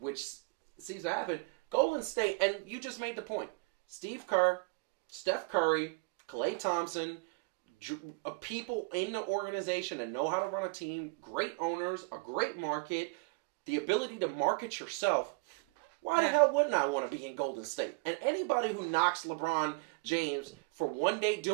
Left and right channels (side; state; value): left; quieter; 29.7 dB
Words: seems to happen. Golden State, and you just made the point. Steve Kerr, Steph Curry, Klay Thompson, people in the organization that know how to run a team, great owners, a great market, the ability to market yourself. Why the hell wouldn't I want to be in Golden State? And anybody who knocks LeBron James for one day